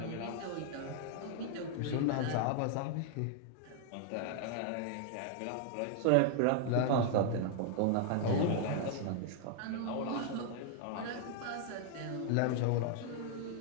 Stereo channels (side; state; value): both; different; correlation 0.00